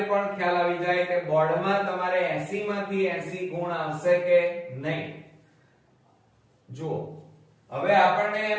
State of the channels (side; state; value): both; identical; correlation 1.00